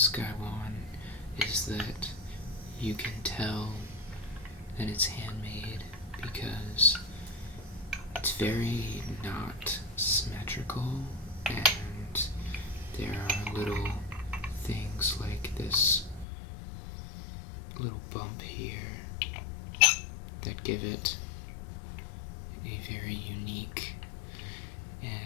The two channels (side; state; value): right; drops out; at 16.2 s